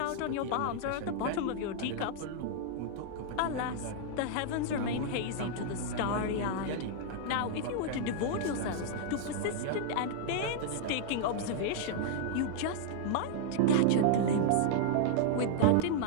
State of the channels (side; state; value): both; different; correlation -0.01